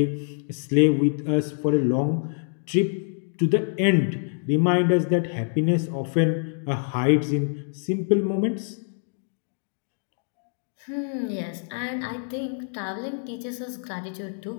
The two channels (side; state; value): right; silent; digital silence